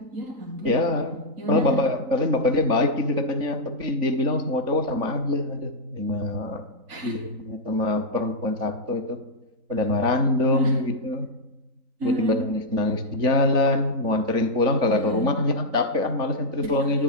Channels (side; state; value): left; late; 3.9 ms